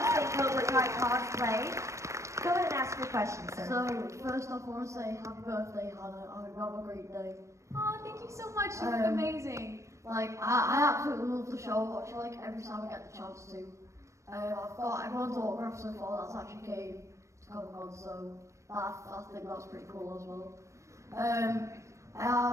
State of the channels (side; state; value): left; late; 0.14 ms